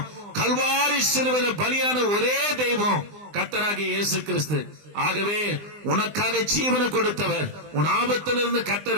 கல்வாரி சிலுவையில் பலியான ஒரே தெய்வம் கர்த்தராகிய இயேசு கிறிஸ்து. ஆகவே உனக்காக ஜீவனை கொடுத்தவர், உன் ஆபத்திலிருந்து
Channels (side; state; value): left; late; 20 ms